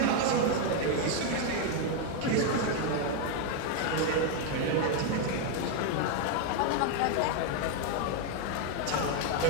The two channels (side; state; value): both; different; correlation 0.01